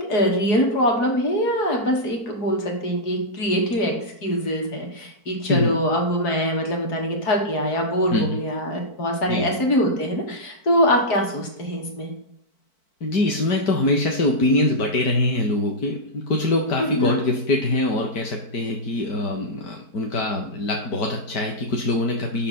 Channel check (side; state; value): right; late; 4.5 ms